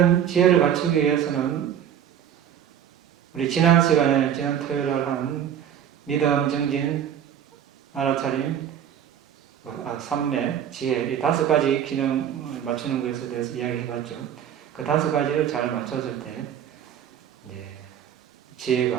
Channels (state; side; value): quieter; left; 9.4 dB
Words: 지혜를 갖추기 위해서는 우리 지난 시간에, 지난 토요일 한 믿음, 정진, 알아차림, 삼매, 지혜, 이 5가지 기능을 맞추는 것에 대해서 이야기해봤죠. 그 5가지를 잘 맞춰줄 때 이제